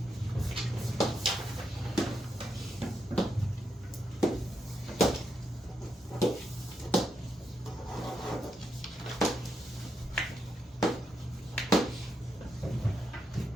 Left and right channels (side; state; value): both; normal; correlation 0.82